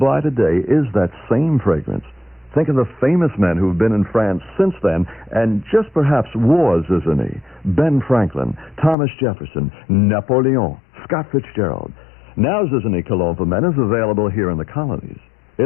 today is that same fragrance. Think of the famous men who've been in France since then and just perhaps wore Zizanie. Ben Franklin, Thomas Jefferson, Napoleon, Scott Fitzgerald. Now Zizanie Cologne for Men is available here in the colonies.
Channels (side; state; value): right; drops out; at 9.0 s